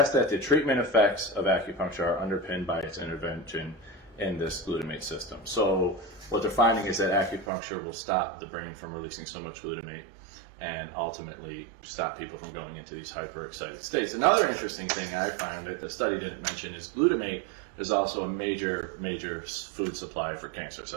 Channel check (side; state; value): left; drops out; at 7.5 s